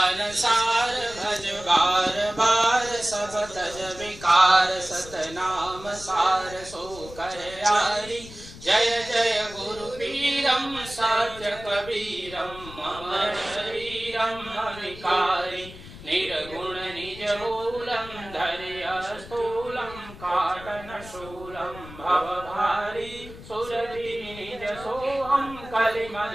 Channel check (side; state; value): left; noise; rumble, 16 dB below the sound